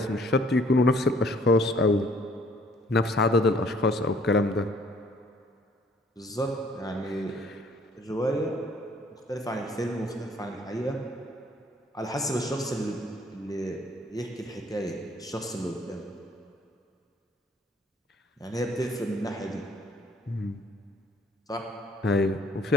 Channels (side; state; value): both; normal; correlation 0.60